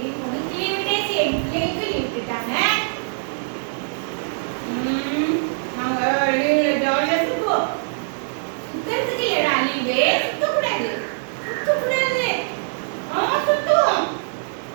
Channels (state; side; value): silent; left; digital silence